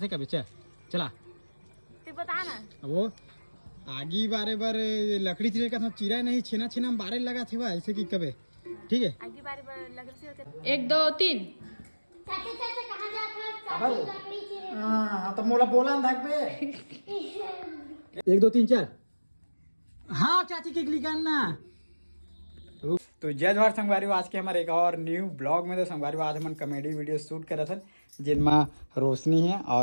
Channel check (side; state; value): both; inverted; correlation -1.00